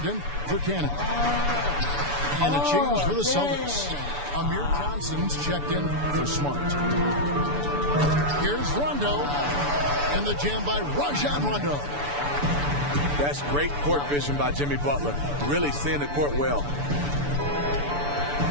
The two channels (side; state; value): left; late; 6.9 ms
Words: in for Cannon. And a change for the Celtics. Amir Johnson's checked in for Smart. Here's Rondo, and the jam by Rajon Rondo. That's great court vision by Jimmy Butler. Really seeing the court well.